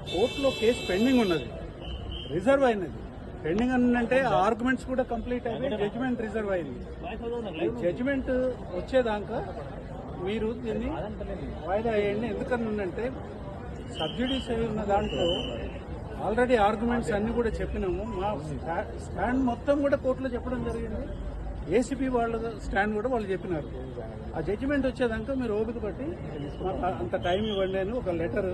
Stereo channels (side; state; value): both; identical; correlation 1.00